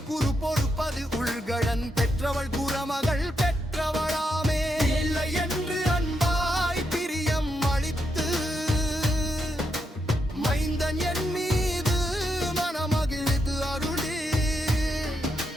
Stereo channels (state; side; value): normal; both; correlation 0.82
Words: குரு பொறுப்பது உள்கடன் பெற்றவள் குரமகள் பெற்றவளாமே. இல்லை என்று அன்பாய் பிரியம் அளித்து மைந்தன் என் மீது மனமகிழ்ந்து அருளி